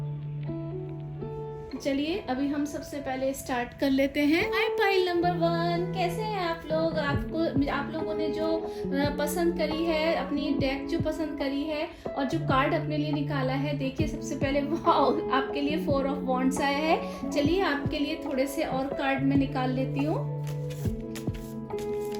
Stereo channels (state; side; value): identical; both; correlation 1.00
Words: चलिए अभी हम सबसे पहले स्टार्ट कर लेते हैं। हाय पाइल नंबर 1, कैसे हैं आप लोग? आप लोगों ने जो पसंद करी है, अपनी डेक जो पसंद करी है और जो कार्ड अपने लिए निकाला है, देखिए सबसे पहले वाओ, आपके लिए 4 ऑफ वॉन्ड्स आया है। चलिए आपके लिए थोड़े से और कार्ड मैं निकाल लेती हूँ।